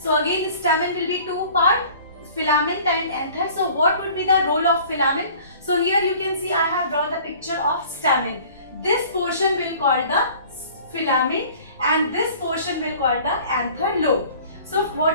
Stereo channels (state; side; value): inverted; both; correlation -0.49